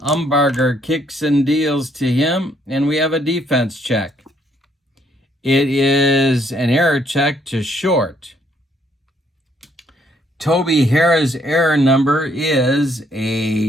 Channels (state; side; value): normal; both; correlation 0.69